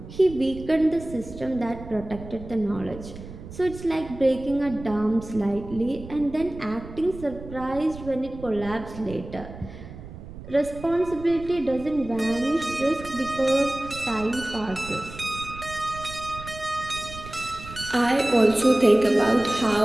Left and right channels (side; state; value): right; noise; rumble, 14 dB below the sound